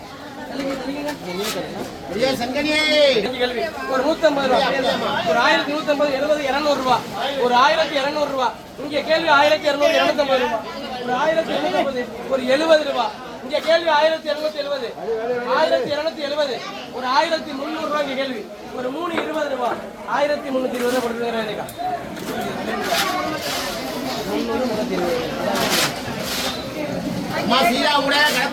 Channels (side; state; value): both; identical; correlation 1.00